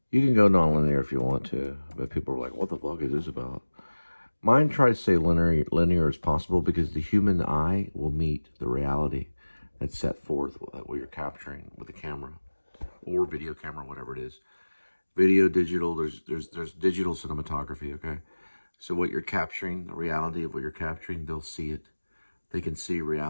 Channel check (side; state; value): both; inverted; correlation -1.00